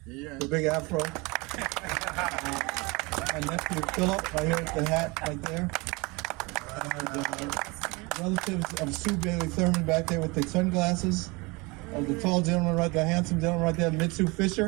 the big afro. My nephew Philip, right here with the hat right there. Relatives of Sue Bailey Thurman back there with the sunglasses. Of the tall gentleman right there, handsome gentleman right there, Mitsu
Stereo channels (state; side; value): quieter; left; 26.0 dB